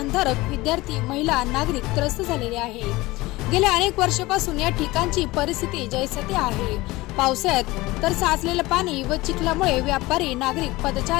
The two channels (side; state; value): right; quieter; 20.3 dB